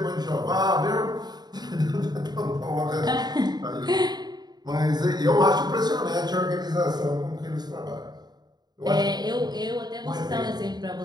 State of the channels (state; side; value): late; left; 0.20 ms